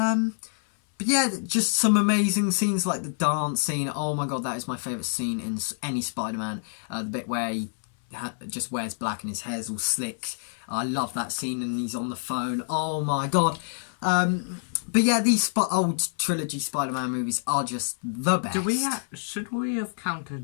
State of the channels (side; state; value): right; silent; 60 dB below the other